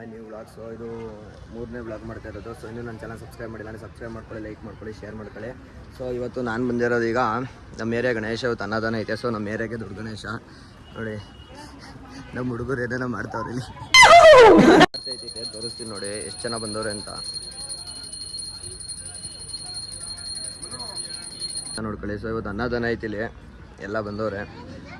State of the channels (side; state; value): both; identical; correlation 1.00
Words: new vlog. So ಇದು 3ನೇ ವ್ಲಾಗ್ ಮಾಡ್ತಾ ಇರೋದು. ಸೊ ಇನ್ನೂ ನನ್ನ ಚಾನಲ್ ಸಬ್ಸ್ಕ್ರೈಬ್ ಮಾಡಿಲ್ಲ ಅಂದರೆ ಸಬ್ಸ್ಕ್ರೈಬ್ ಮಾಡ್ಕೊಳ್ಳಿ, ಲೈಕ್ ಮಾಡ್ಕೊಳ್ಳಿ, ಶೇರ್ ಮಾಡ್ಕೊಳ್ಳಿ. ಸೊ ಇವತ್ತು ನಾನು ಬಂದಿರೋದು ಈಗ ನಮ್ಮ ಏರಿಯಾ ಗಣೇಶ ಇವತ್ತು ಅನ್ನದಾನ ಐತೆ. ಸೊ ನಮ್ಮ ಏರಿಯಾಗೆ ದೊಡ್ಡ ಗಣೇಶ ನೋಡಿ, ನಮ್ಮ ಹುಡುಗರು ಏನೇನೋ ಮಾಡ್ತಾವ್ರೆ ಇಲ್ಲಿ. ತೋರಿಸ್ತೀನಿ ನೋಡಿ ಎಷ್ಟು ಜನ ಬಂದವ್ರೆ ಅಂತ ನೋಡ್ಕೊಳ್ಳಿ. ಸೊ ಇವತ್ತು ಅನ್ನದಾನ ಐತಿ ಇಲ್ಲಿ, ಎಲ್ಲ ಬಂದವ್ರೆ.